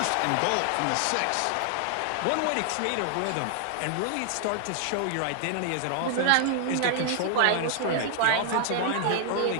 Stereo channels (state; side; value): different; both; correlation -0.01